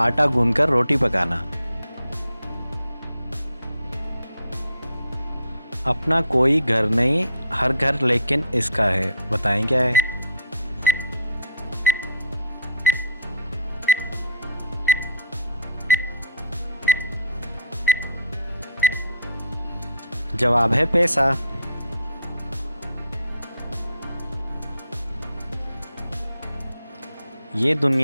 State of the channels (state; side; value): inverted; both; correlation -0.55